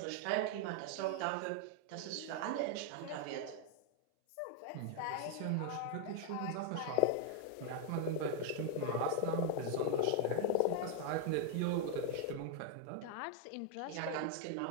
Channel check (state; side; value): different; both; correlation 0.00